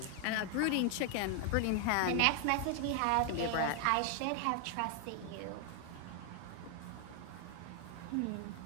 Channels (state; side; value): different; both; correlation 0.00